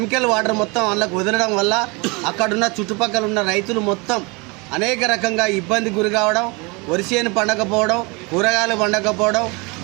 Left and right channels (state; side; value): quieter; left; 28.3 dB